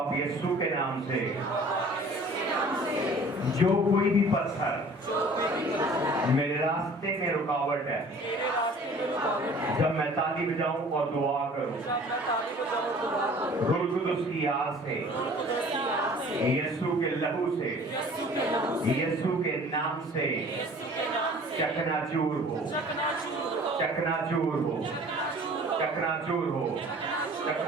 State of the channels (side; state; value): both; normal; correlation 0.48